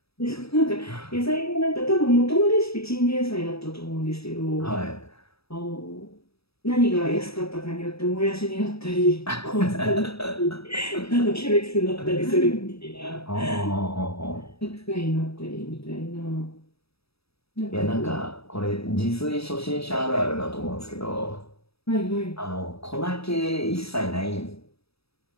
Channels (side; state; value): right; late; 0.77 ms